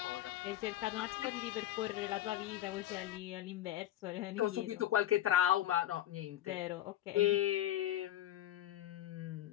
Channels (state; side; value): quieter; right; 12.9 dB